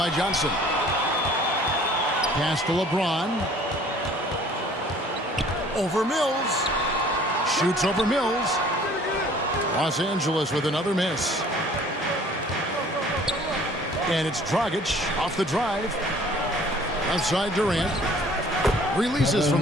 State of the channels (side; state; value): both; normal; correlation 0.53